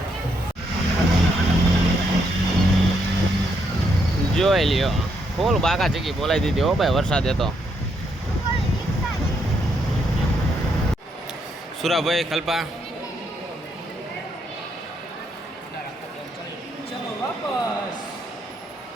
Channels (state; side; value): normal; both; correlation 0.76